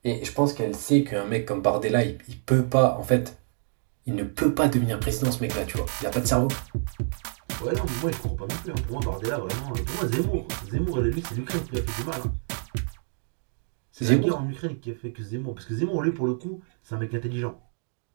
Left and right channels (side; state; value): left; silent; digital silence